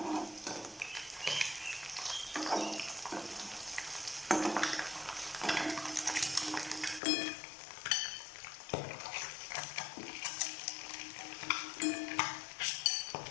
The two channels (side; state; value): right; drops out; at 7.0 s